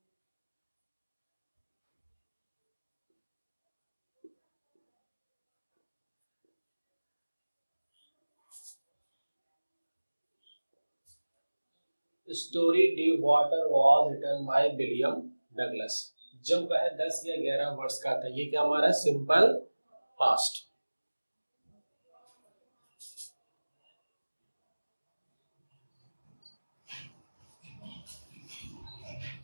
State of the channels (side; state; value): both; inverted; correlation -1.00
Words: Story the water was written by William Douglas. जब वह 10 या 11 वर्ष का था। ये क्या हमारा सिंपल पास्ट।